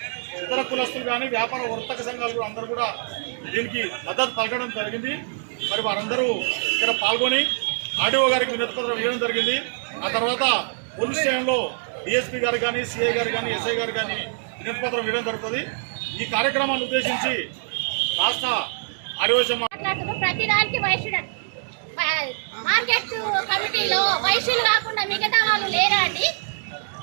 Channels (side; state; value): left; silent; digital silence